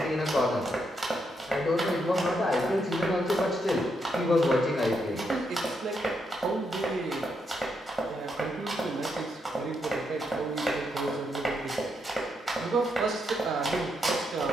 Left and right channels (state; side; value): normal; both; correlation 0.80